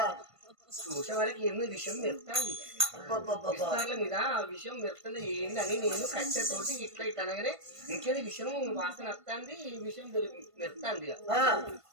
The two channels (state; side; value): late; left; 1.5 ms